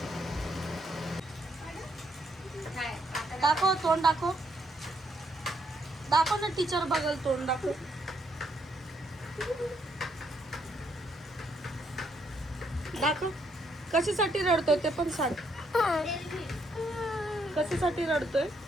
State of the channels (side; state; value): both; normal; correlation 0.73